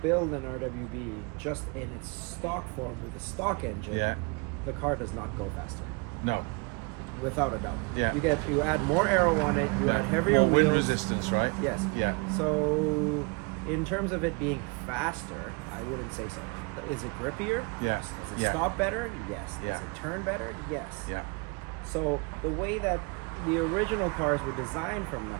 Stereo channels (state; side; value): quieter; left; 30.6 dB